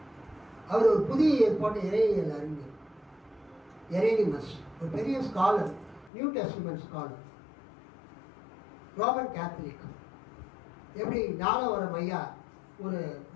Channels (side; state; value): right; drops out; at 6.1 s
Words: அவர் ஒரு புதிய ஏற்பாடு இறையியல் அறிஞர். எரேனிமஸ் ஒரு பெரிய scholar, new testament scholar, Roman Catholic. எப்படி ஞானவரம் ஐயா ஒரு